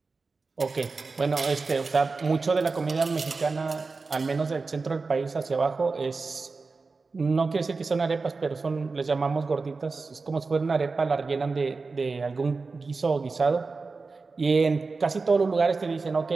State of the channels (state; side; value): quieter; left; 4.1 dB